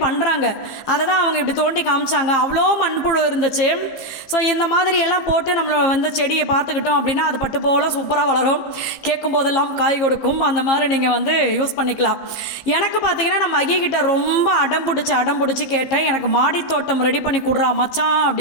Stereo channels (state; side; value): late; right; 15 ms